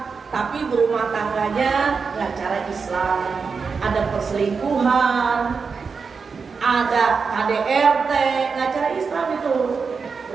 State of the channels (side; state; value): left; quieter; 5.2 dB